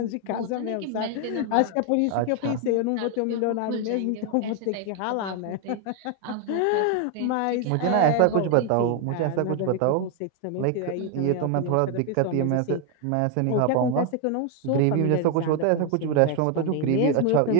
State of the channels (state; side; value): different; both; correlation 0.01